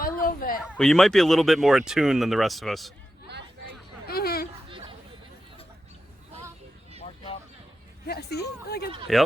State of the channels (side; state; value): both; normal; correlation 0.90